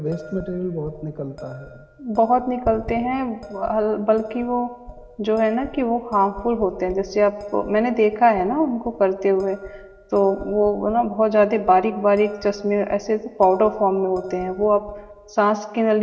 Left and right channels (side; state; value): both; identical; correlation 1.00